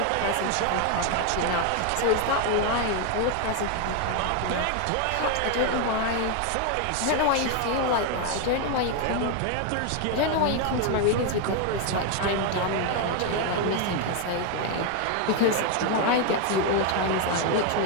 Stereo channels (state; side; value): different; both; correlation 0.01